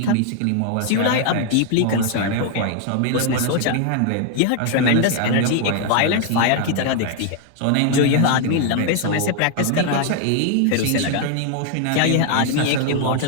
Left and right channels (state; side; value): different; both; correlation 0.00